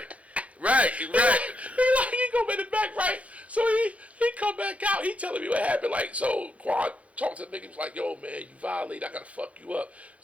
go in the back, right? So he come back out. He telling me what happened. Like, so Quan talked to the nigga. He was like, yo, man, you violate. I gotta fuck you up.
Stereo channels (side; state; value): left; late; 0.065 ms